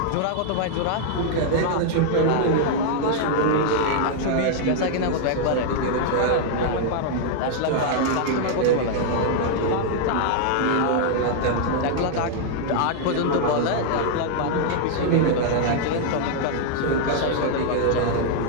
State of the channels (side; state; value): both; different; correlation 0.00